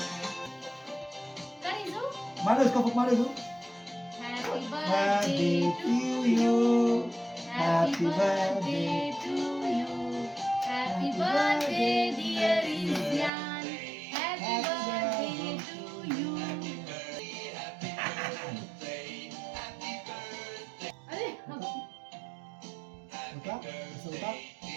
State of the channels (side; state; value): left; drops out; at 13.3 s